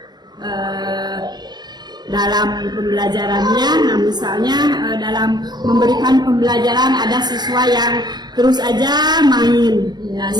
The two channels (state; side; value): late; left; 0.20 ms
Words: dalam pembelajarannya. Nah misalnya dalam memberikan pembelajaran ada siswa yang terus aja main,